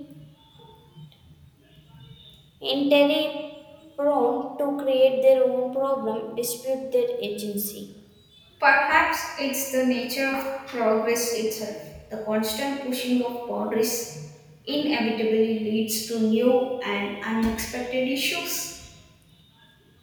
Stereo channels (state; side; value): identical; both; correlation 1.00